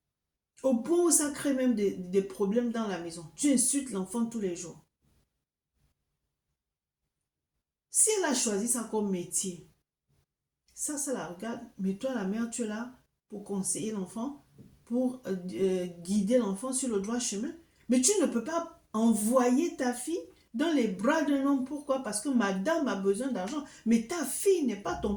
Au point où ça crée même des problèmes dans la maison. Tu insultes l'enfant tous les jours. Si elle a choisi ça comme métier, ça la regarde. Mais toi, la mère, tu es là pour conseiller l'enfant, pour guider l'enfant sur le droit chemin. Mais tu ne peux pas envoyer ta fille dans les bras d'un homme. Pourquoi? Parce que madame a besoin d'argent. Mais ta fille n'est pas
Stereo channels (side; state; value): both; identical; correlation 1.00